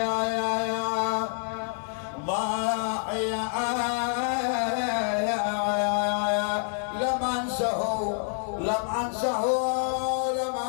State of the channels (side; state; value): right; silent; 60 dB below the other